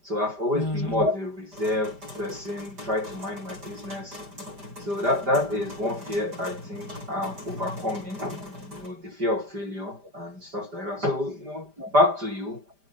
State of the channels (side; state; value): left; late; 5.0 ms